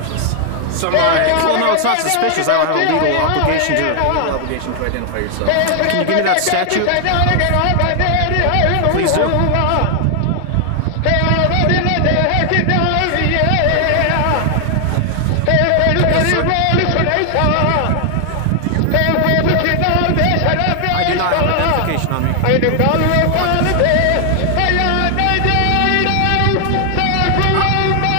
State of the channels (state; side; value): different; both; correlation 0.00